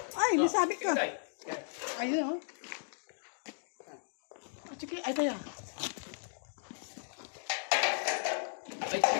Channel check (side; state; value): right; silent; digital silence